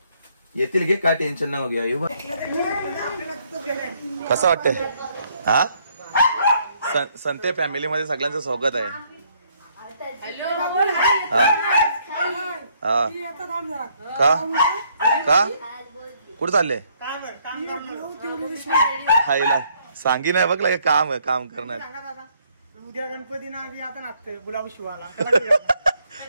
येतील घे काय टेन्शन नाही घ्या येऊ कसं वाटतंय हा संते फॅमिली मध्ये सगळ्यांचं स्वागत आहे का का कुठं चालले हायला सांगी नाही बघ काम काम करणार उद्या गणपती ना आता नाचतोय गुलाब शिवाला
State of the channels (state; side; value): inverted; both; correlation -0.68